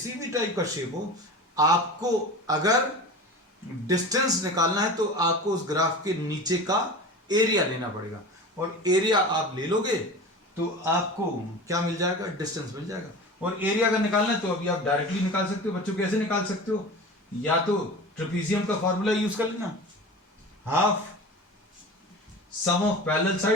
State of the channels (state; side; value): normal; both; correlation 0.33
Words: भी टाइप का शेप हो, आपको अगर डिस्टेंस निकालना है तो आपको उस ग्राफ के नीचे का एरिया लेना पड़ेगा, और एरिया आप ले लोगे तो आपको क्या मिल जाएगा, डिस्टेंस मिल जाएगा। और एरिया अगर निकालना है तो अभी आप डायरेक्टली निकाल सकते हो बच्चों। कैसे निकाल सकते हो, या तो ट्रेपीजियम का फॉर्मूला यूज कर लेना, half sum of parallel